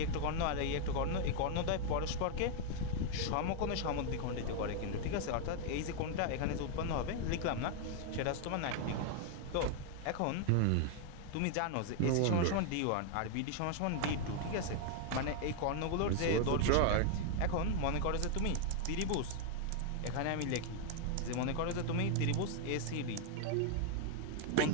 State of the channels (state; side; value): different; both; correlation 0.00